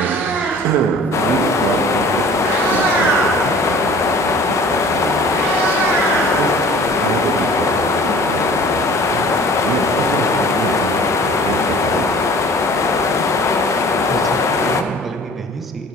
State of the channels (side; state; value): both; normal; correlation 0.47